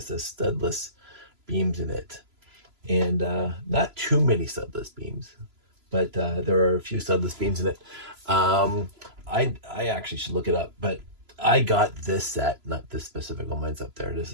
the studless beams in it, and not too many studless beams, but there are a few studless beams in it. Um, I actually should look it up, but I got this set, not this specific one. Mine's up there. This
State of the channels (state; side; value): late; left; 3.0 ms